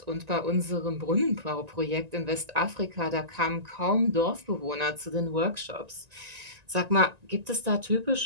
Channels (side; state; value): left; late; 1.9 ms